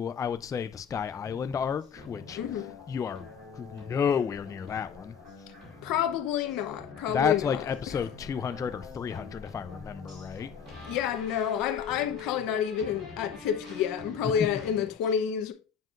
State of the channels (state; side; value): quieter; right; 7.6 dB